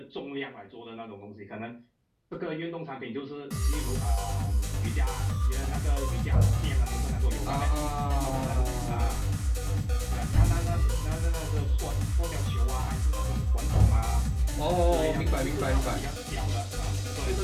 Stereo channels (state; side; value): identical; both; correlation 1.00